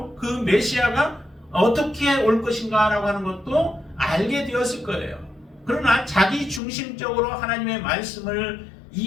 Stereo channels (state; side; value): drops out; right; at 6.6 s